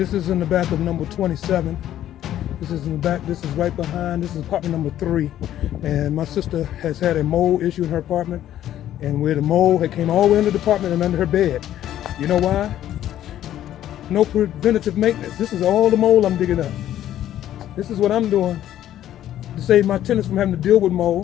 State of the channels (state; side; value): quieter; right; 12.1 dB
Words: is in the back of number 27. This is in the back. This is right behind. This is apartment number 3. And my sister has had a mold issue in her apartment. And where the mold had came all the way into the apartment and under her bed. You know why? No preventative maintenance. This is all the mold I'm digging up. This is what I'm doing to save my tenants from having to deal with